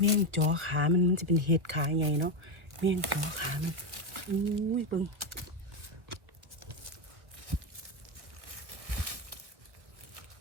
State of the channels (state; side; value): late; left; 1.0 ms